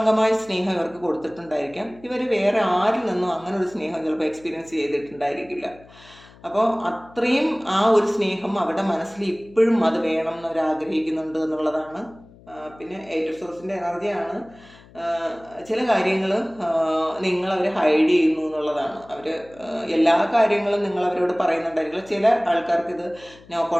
സ്നേഹം ഇവർക്ക് കൊടുത്തിട്ടുണ്ടായിരിക്കാം. ഇവർ വേറെ ആരിൽ നിന്നും അങ്ങനെ ഒരു സ്നേഹം ചിലപ്പോൾ എക്സ്പീരിയൻസ് ചെയ്തിട്ടുണ്ടായിരിക്കില്ല. അപ്പോൾ അത്രയും ആ ഒരു സ്നേഹം അവരുടെ മനസ്സിൽ ഇപ്പോഴും അത് വേണം എന്നവർ ആഗ്രഹിക്കുന്നുണ്ട് എന്നുള്ളതാണ്. പിന്നെ എയ്റ്റ് സോഴ്സിൻ്റെ എനർജിയാണ്. ചില കാര്യങ്ങൾ നിങ്ങളവർ ഹൈഡ് ചെയ്യുന്നു എന്നുള്ളതാണ്. അവർ എല്ലാ കാര്യങ്ങളും നിങ്ങൾ അവരോട് പറയുന്നുണ്ടായിരിക്കില്ല. ചില ആൾക്കാർക്ക് ഇത് നോ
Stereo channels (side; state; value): left; noise; hum, 24 dB below the sound